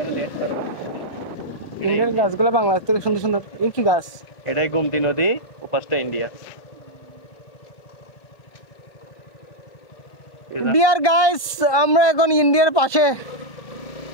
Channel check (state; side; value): late; right; 1.2 ms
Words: এরা দেশ তারা। এটা ইন্ডিয়ার ইন্ডিয়া। গাছগুলো বাংলাদেশ থেকে সুন্দর সুন্দর। এই কি গাছ? এটাই গোমতী নদী, ওপাশটা ইন্ডিয়া। ডিয়ার গাইস, আমরা এখন ইন্ডিয়ার পাশে।